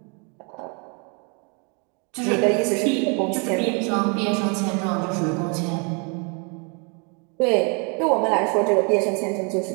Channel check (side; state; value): left; quieter; 35.1 dB